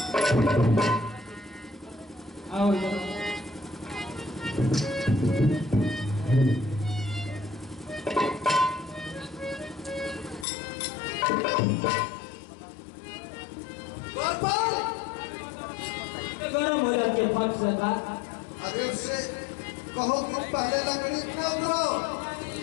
आओ इधर गरम हो जाती है फट से का अरे उससे कहो कि पहले लकड़ी न उतराओ।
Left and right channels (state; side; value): drops out; right; at 10.5 s